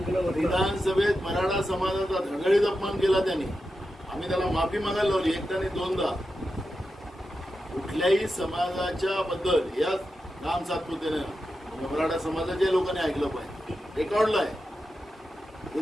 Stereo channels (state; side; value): normal; both; correlation 0.90